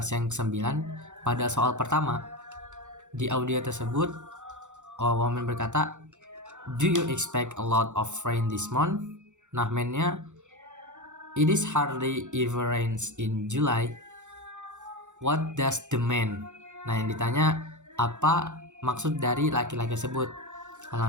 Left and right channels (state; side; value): late; left; 0.85 ms